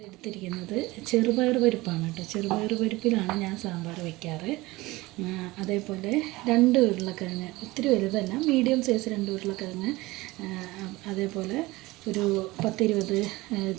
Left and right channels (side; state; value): left; quieter; 20.5 dB